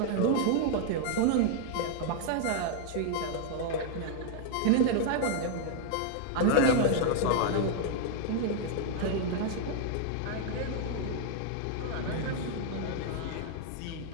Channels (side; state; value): both; different; correlation 0.00